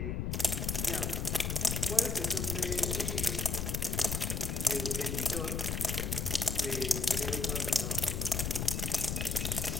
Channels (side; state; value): left; noise; rumble, 1 dB below the sound